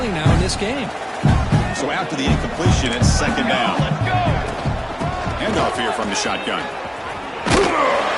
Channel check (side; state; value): both; identical; correlation 1.00